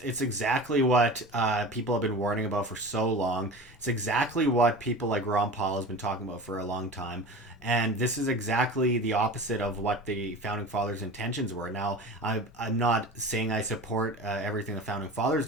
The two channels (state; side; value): normal; both; correlation 0.35